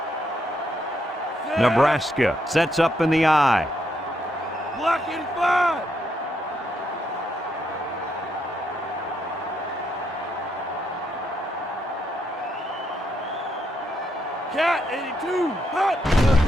Nebraska sets up in the I. Block 85. Cat 82. Hut.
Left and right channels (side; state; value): both; normal; correlation 0.77